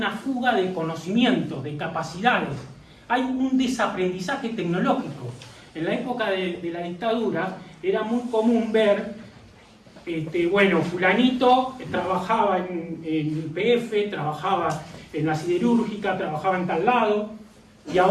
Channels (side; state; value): both; identical; correlation 1.00